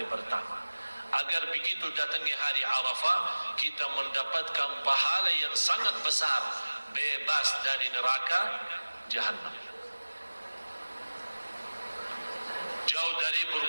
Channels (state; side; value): inverted; both; correlation -1.00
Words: pertama, agar begitu datangnya hari Arafah kita mendapatkan pahala yang sangat besar, bebas dari neraka Jahannam, jauh dari